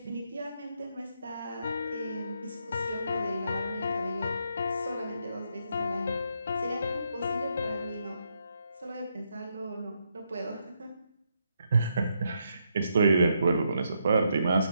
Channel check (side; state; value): both; inverted; correlation -0.78